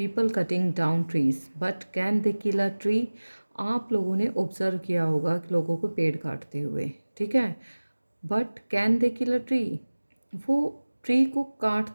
cutting down trees but can they kill a tree. आप लोगों ने ऑब्जर्व किया होगा कि लोगों को पेड़ काटते हुए, ठीक है। But can they kill a tree, वो ट्री को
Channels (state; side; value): inverted; both; correlation -1.00